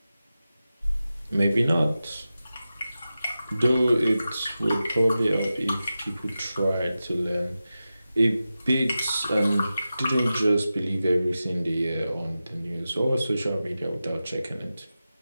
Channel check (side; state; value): both; inverted; correlation -0.93